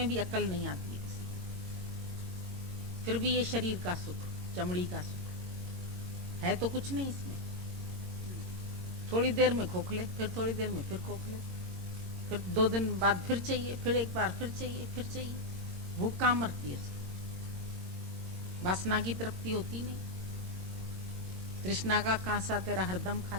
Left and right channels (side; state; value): left; late; 22 ms